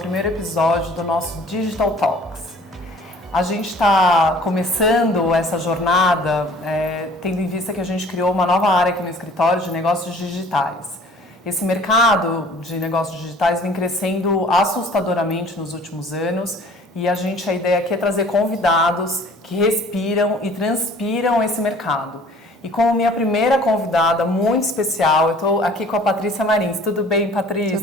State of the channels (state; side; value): normal; both; correlation 0.51